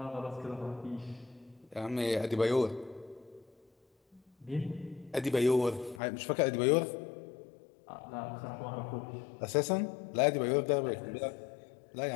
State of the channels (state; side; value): drops out; right; at 6.0 s